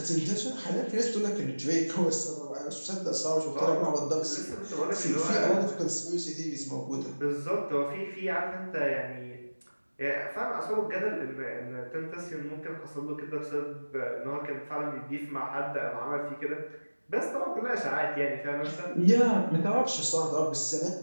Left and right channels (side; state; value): both; inverted; correlation -1.00